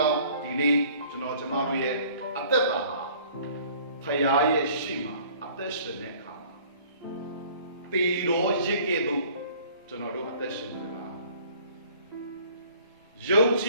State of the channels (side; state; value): both; inverted; correlation -0.53